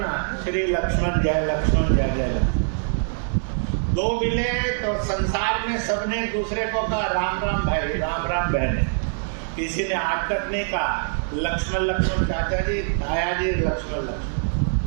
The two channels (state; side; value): silent; left; 63 dB below the other